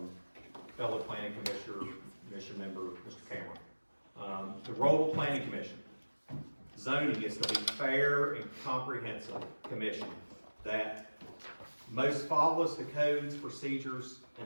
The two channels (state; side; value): inverted; both; correlation -1.00